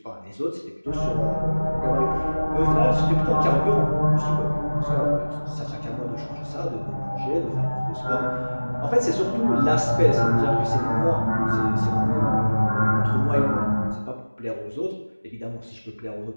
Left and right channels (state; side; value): inverted; both; correlation -1.00